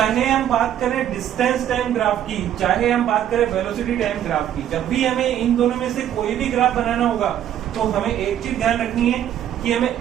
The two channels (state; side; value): quieter; left; 10.7 dB